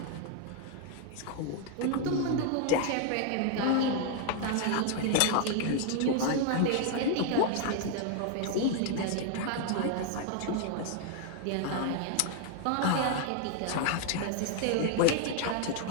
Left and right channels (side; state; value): both; different; correlation 0.00